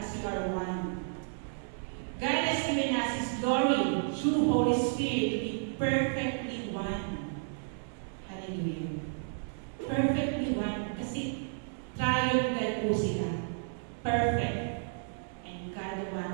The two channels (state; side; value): silent; left; digital silence